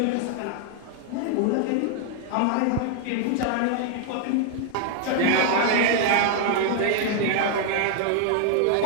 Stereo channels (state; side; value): different; both; correlation 0.00